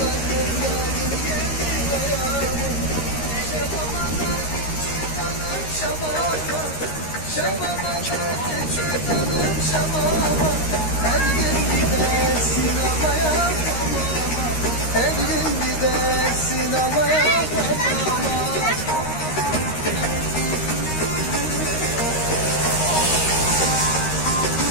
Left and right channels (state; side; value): late; right; 13 ms